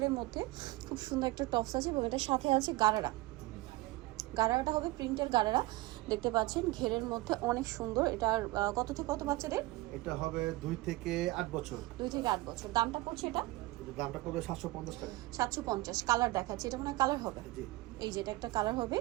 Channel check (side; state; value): left; quieter; 20.0 dB